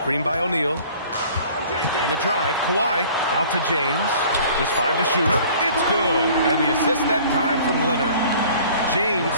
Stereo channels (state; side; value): inverted; both; correlation -0.50